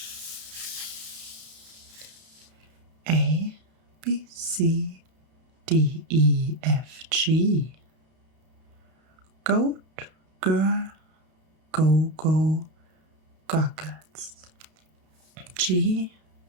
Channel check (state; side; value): late; left; 32 ms